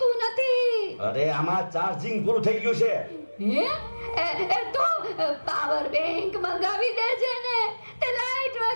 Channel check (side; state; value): both; inverted; correlation -1.00